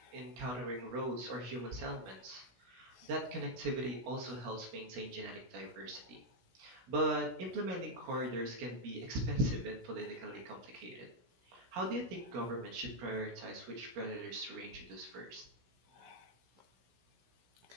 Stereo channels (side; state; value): left; late; 16 ms